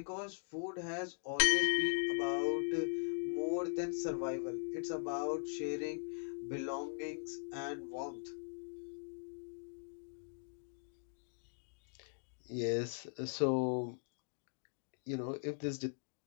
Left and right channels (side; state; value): right; silent; digital silence